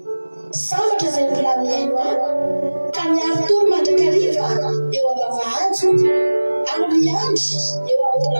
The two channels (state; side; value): inverted; both; correlation -1.00